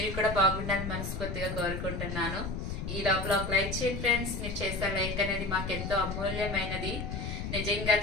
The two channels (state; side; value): noise; left; rumble, 5 dB below the sound